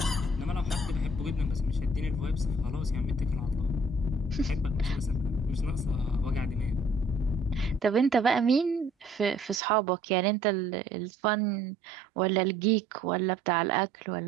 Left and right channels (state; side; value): drops out; left; at 9.6 s